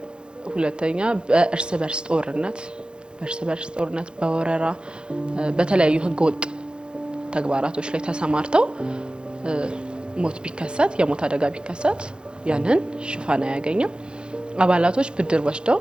ሁለተኛ በእርስ በርስ ጦርነት፣ በወረራ፣ በተለያዩ ህገወጥ ተግባራቶች ላይ ተሰማርተው ሞት ቢከሰት የሞት አደጋ ቢከሰት ያንን ሽፋን አያገኝም። አባላቶች ብድር ወስደው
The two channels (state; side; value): late; left; 0.051 ms